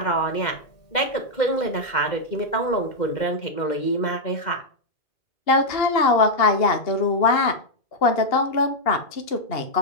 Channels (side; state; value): right; late; 2.1 ms